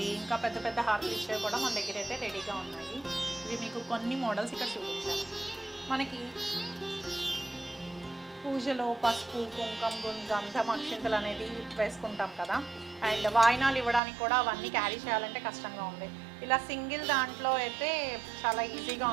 ఇంకా పెద్ద పెద్ద హారతులు ఇచ్చేవి కూడా మన దగ్గర అయితే రెడీగా ఉన్నాయి. ఇవి మీకు కొన్ని మోడల్స్ ఇక్కడ చూపించాను. మనకి పూజలో పసుపు, కుంకుమ, గంధం, అక్షింతలు అనేది వేసుకుంటాం కదా. అండ్ వాయినాలు ఇవ్వడానికి కూడా అవన్నీ క్యారీ చేయాలంటే కష్టంగా ఉంది. ఇలా సింగిల్ దాంట్లో అయితే చాలా ఈజీగా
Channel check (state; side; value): drops out; left; at 14.0 s